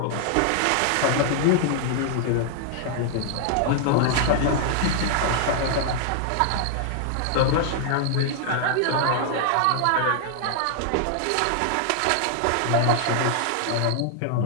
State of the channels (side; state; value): both; different; correlation 0.00